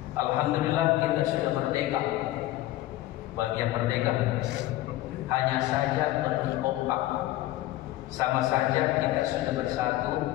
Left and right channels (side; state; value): right; quieter; 15.8 dB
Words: Alhamdulillah kita sudah merdeka. Bagian merdeka, hanya saja belum kompak. Sama saja kita sudah bersatu,